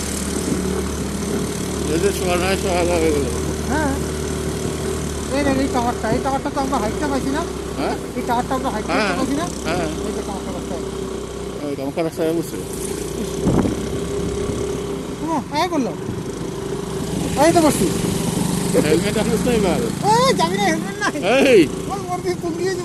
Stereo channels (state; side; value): identical; both; correlation 1.00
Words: এদের সোয়া নয় সোয়া হয়ে গেল হ্যাঁ এই টাওয়ারটা তো আমরা হাইটটা পাইছি না। হ্যাঁ এই টাওয়ারটা আমরা হাইটটা হ্যাঁ পাইছি না। হ্যাঁ এই যে টাওয়ারটা রাস্তা গামাখা রাস্তায় বসছে এই করলো, এই তো বসছি। হেলমেট আসিস না এবার এই যাবি না, হেলমেট নাই। এই ওর দিয়ে তুল দিয়ে